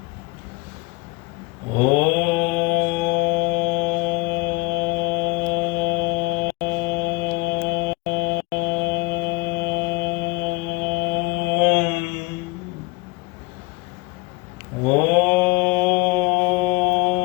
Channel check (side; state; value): right; quieter; 23.5 dB